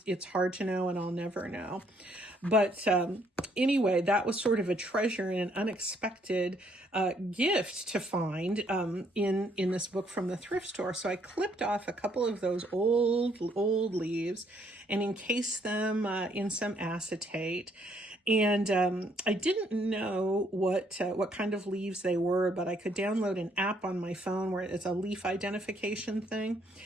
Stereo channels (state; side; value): normal; both; correlation 0.68